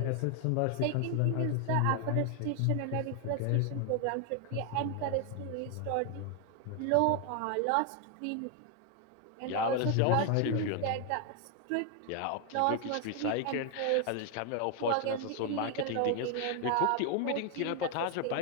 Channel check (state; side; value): different; both; correlation 0.00